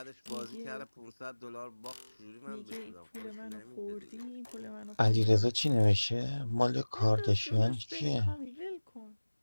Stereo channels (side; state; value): both; inverted; correlation -1.00